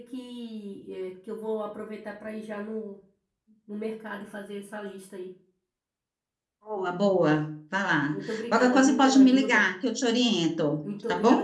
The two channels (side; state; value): both; identical; correlation 1.00